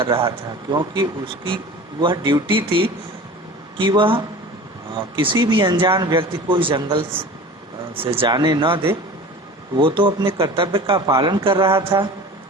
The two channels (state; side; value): normal; both; correlation 0.38